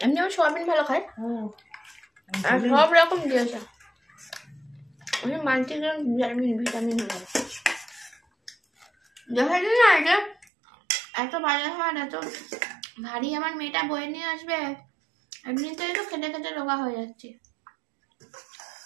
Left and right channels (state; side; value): drops out; left; at 10.5 s